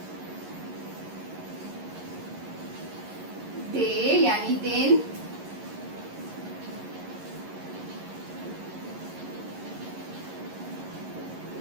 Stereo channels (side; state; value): left; late; 11 ms